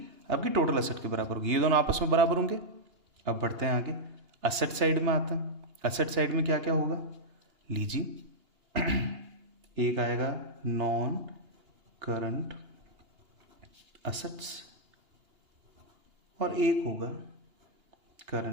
आपकी टोटल असेट के बराबर होगी। ये दोनों आपस में बराबर होंगे। अब बढ़ते हैं आगे, असेट साइड में आते हैं। असेट साइड में क्या क्या होगा लीजिए। एक आएगा नॉन करंट असेट्स और एक होगा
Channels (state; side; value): late; left; 2.8 ms